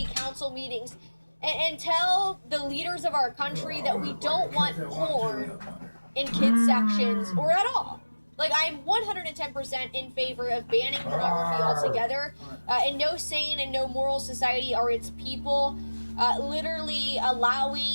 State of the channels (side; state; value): both; inverted; correlation -1.00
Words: council meetings, and tell the leaders of our country that we don't want porn in kids sections or at all. Like, I'm 110% in favor of banning pornography altogether. And no sane and no moral society are its people literally